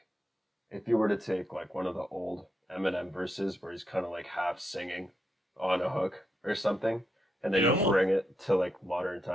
if you were to take like one of the old Eminem verses where he's kind of like half singing on a hook or something, and then It you almost bring it to like modern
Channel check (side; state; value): both; normal; correlation 0.83